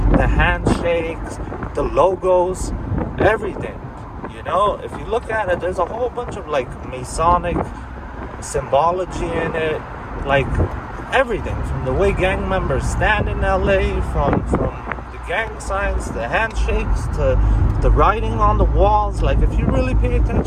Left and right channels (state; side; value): identical; both; correlation 1.00